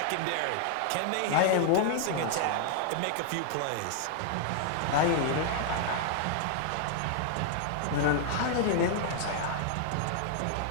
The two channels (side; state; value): both; different; correlation 0.00